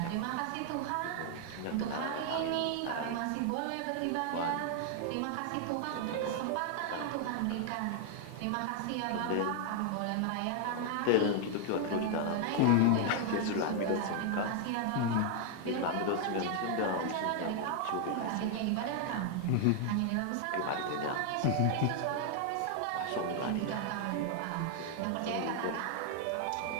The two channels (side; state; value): both; different; correlation 0.00